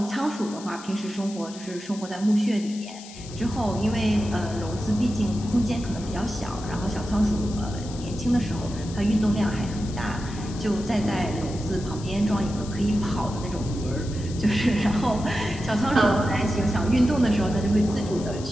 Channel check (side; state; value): left; noise; hiss, 16 dB below the sound